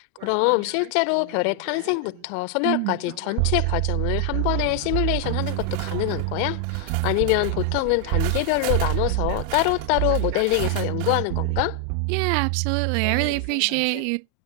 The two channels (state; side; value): different; both; correlation 0.00